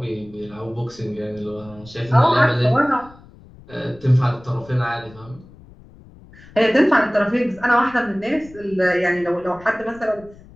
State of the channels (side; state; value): left; noise; rumble, 22 dB below the sound